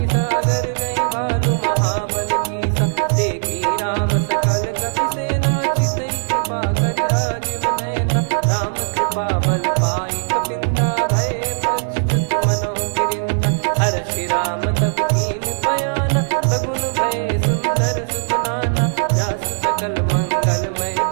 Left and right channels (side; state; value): left; silent; digital silence